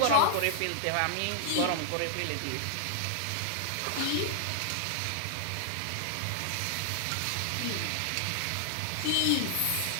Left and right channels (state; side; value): different; both; correlation -0.01